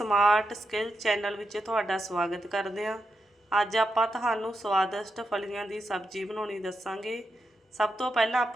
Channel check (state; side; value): normal; both; correlation 0.85